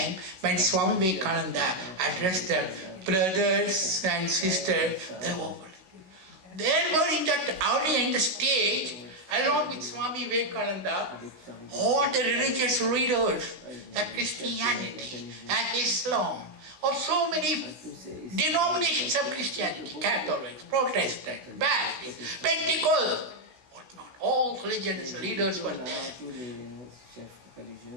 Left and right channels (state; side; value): late; left; 16 ms